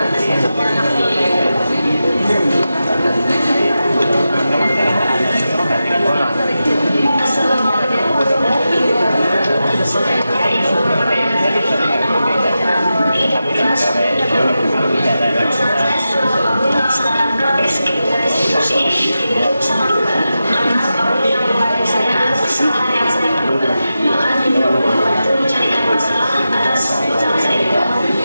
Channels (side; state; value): both; inverted; correlation -0.91